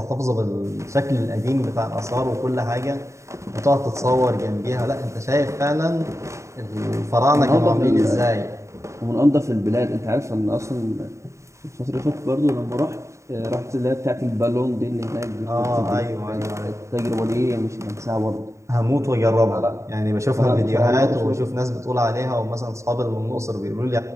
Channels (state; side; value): late; left; 0.14 ms